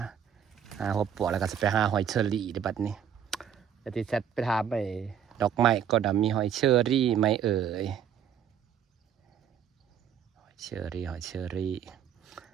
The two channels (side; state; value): left; quieter; 8.5 dB